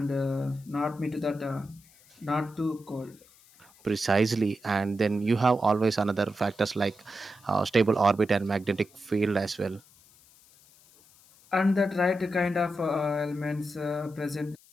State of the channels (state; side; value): noise; left; hiss, 27 dB below the sound